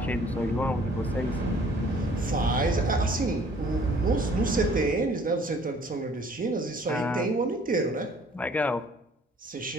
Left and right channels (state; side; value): normal; both; correlation 0.56